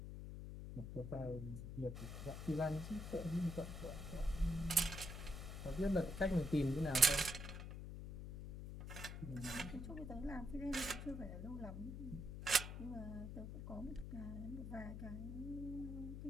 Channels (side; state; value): left; noise; hum, 7 dB below the sound